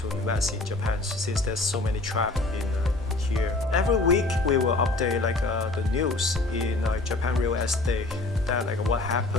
invest in Japan since there's so many traps in here. Every week we will update the news in Japan real estate, that what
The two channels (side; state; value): right; quieter; 3.0 dB